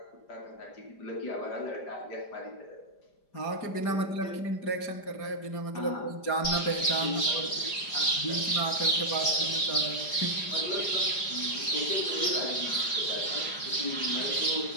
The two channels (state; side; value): late; right; 5.0 ms